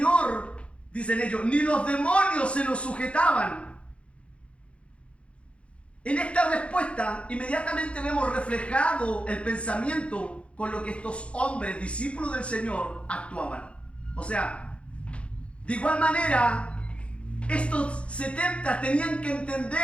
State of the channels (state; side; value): late; right; 0.060 ms